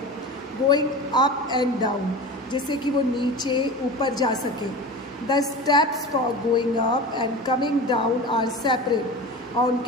गोइंग अप एंड डाउन, जिससे कि वो नीचे ऊपर जा सके. The steps for going up and coming down are separate. और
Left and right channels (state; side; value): normal; both; correlation 0.31